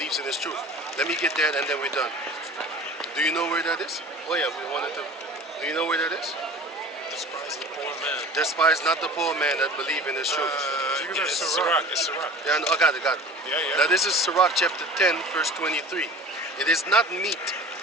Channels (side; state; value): both; normal; correlation 0.40